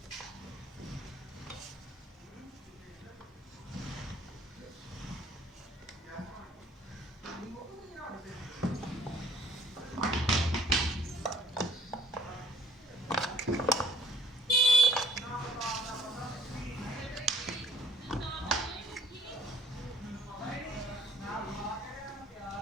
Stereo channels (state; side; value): normal; both; correlation 0.60